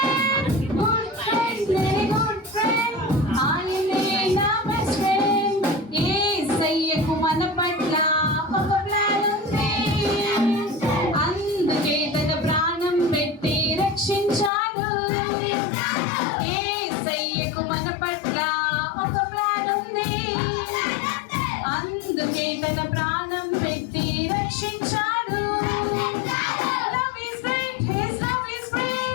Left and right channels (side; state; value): right; drops out; at 14.5 s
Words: Good friend, very good friend, ఆయనే నా బెస్ట్ ఫ్రెండ్. యేసయ్యకు మన పట్ల ఒక ప్లాన్ ఉంది, అందుకే తన ప్రాణం పెట్టి రక్షించాడు. యేసయ్యకు మన పట్ల ఒక ప్లాన్ ఉంది, అందుకే తన ప్రాణం పెట్టి రక్షించాడు. Love is great, his love is